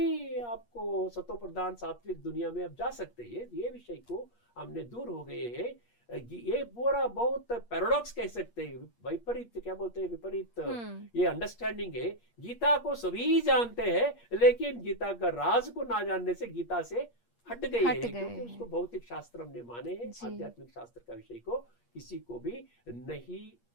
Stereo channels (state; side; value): late; right; 8.5 ms